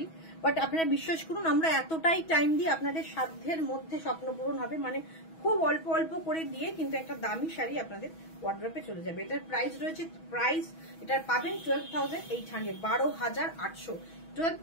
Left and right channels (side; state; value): right; late; 6.2 ms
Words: বাট আপনারা বিশ্বাস করুন আমরা এতটাই টাইম দিয়ে আপনাদের সাধ্যের মধ্যে স্বপ্ন পূরণ হবে, মানে খুব অল্প অল্প করে দিয়ে কিন্তু একটা দামি শাড়ি আপনাদের ওয়ার্ড্রপে চলে যাবে। এটার প্রাইস রয়েছে, প্রাইস এটার পাবেন 12,800, 12,800,